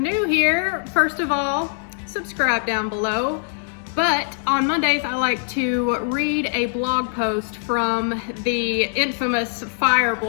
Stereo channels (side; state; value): right; silent; digital silence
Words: here, first of all, subscribe down below. But on Mondays, I like to read a blog post from the infamous F.I.R.E